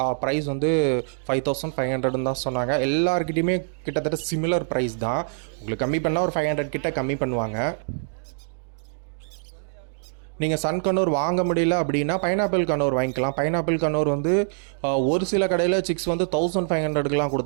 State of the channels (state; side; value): silent; left; digital silence